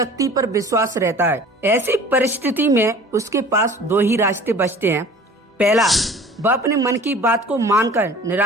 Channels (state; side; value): normal; both; correlation 0.45